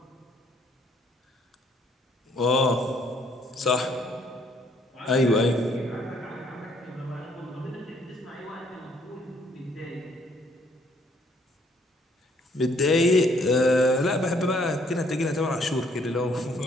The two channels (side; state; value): both; normal; correlation 0.65